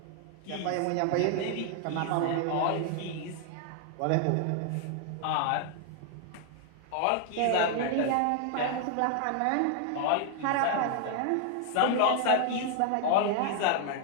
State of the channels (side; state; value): both; different; correlation 0.00